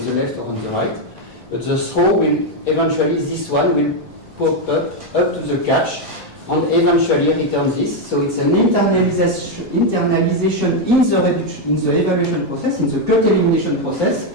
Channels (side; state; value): left; late; 1.6 ms